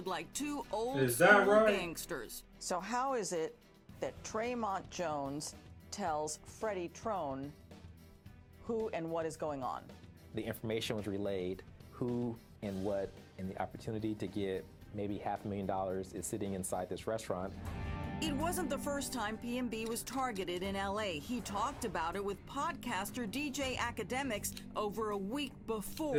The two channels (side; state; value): both; identical; correlation 1.00